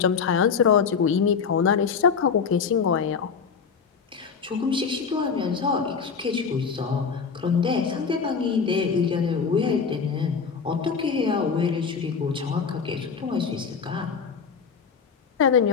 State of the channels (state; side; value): quieter; right; 5.9 dB